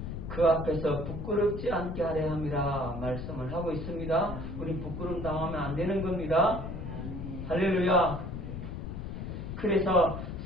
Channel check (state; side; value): noise; left; rumble, 6 dB below the sound